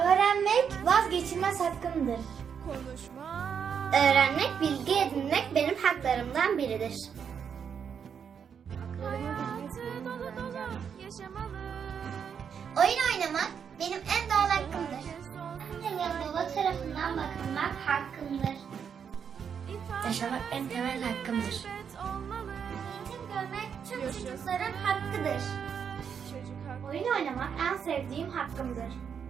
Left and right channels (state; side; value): quieter; left; 7.3 dB